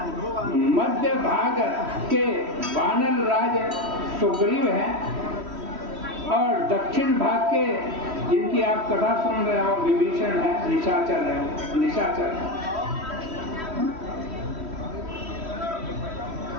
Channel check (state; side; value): late; left; 3.1 ms